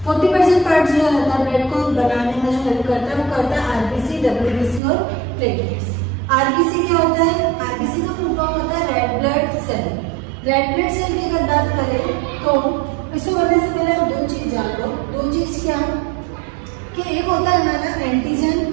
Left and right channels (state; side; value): drops out; left; at 4.8 s